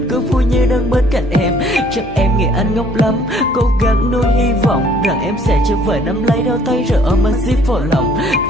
cứ vui như đang bên cạnh em. Chắc em nghĩ anh ngốc lắm, cố gắng nuôi hy vọng rằng em sẽ trở về nắm lấy đôi tay rồi ôm anh zip vào lòng.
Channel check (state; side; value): normal; both; correlation 0.60